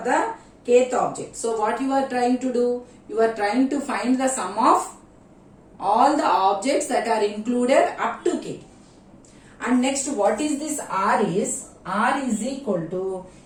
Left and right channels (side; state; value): both; identical; correlation 1.00